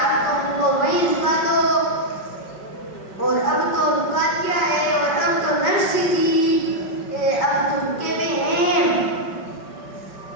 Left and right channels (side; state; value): right; late; 5.3 ms